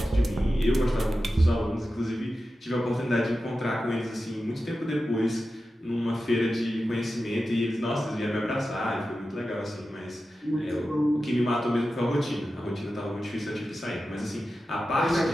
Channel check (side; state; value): both; normal; correlation 0.92